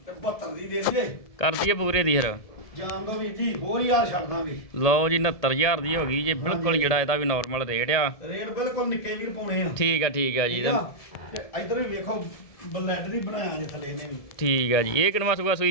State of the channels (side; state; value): right; late; 1.7 ms